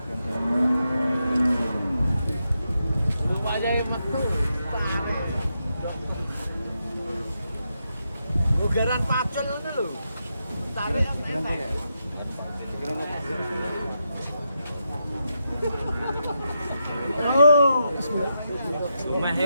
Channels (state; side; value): inverted; both; correlation -0.84